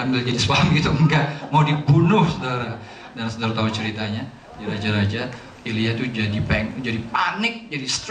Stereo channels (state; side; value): identical; both; correlation 1.00